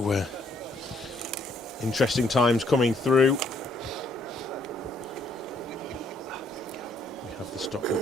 interesting times coming through. We have the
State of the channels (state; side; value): normal; both; correlation 0.69